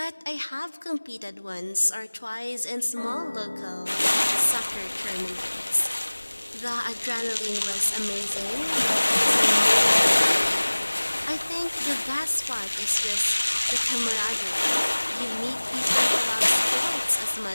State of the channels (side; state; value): both; inverted; correlation -1.00